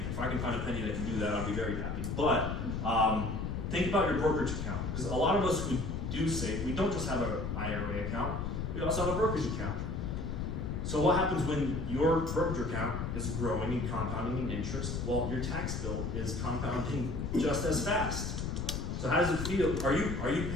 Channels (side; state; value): left; noise; rumble, 3 dB below the sound